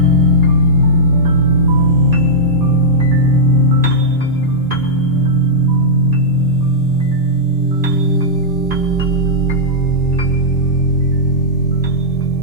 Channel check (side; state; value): both; normal; correlation -0.10